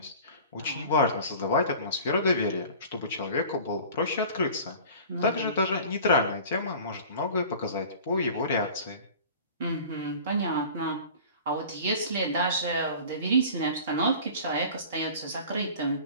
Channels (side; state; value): both; inverted; correlation -0.42